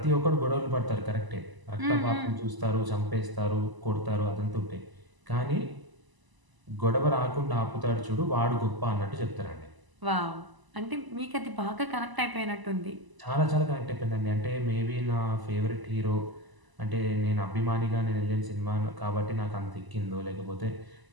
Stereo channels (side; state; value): left; late; 1.0 ms